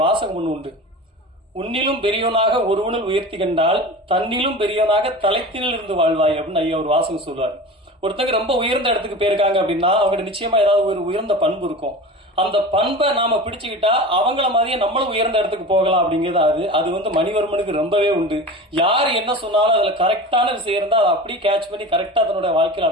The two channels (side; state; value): both; normal; correlation 0.33